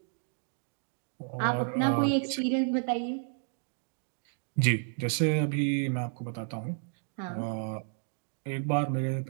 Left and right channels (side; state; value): left; silent; 57 dB below the other